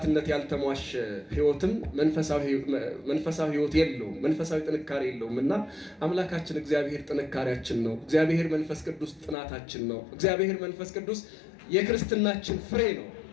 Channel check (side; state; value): right; drops out; at 9.3 s